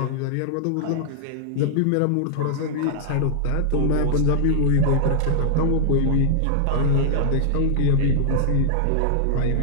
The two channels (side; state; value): both; different; correlation -0.01